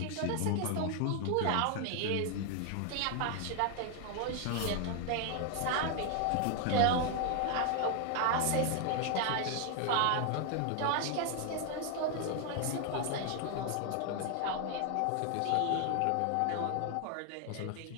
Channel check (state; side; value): different; both; correlation 0.00